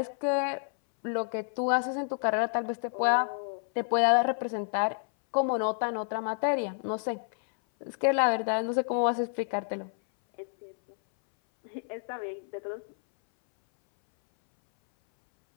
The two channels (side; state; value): right; silent; 58 dB below the other